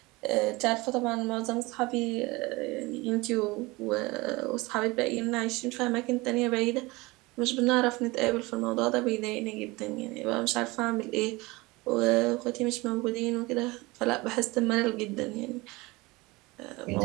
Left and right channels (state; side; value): quieter; left; 22.8 dB